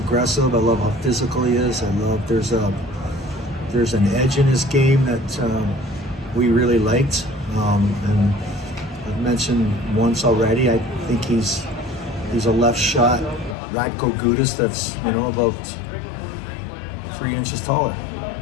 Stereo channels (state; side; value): drops out; right; at 13.6 s